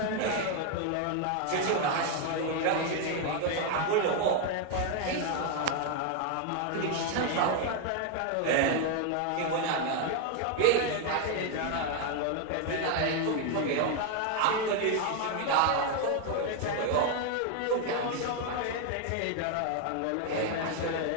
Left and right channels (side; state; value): both; different; correlation 0.01